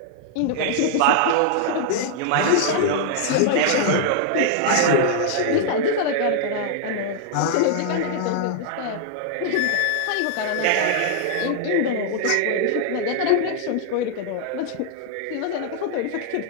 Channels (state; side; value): different; both; correlation -0.01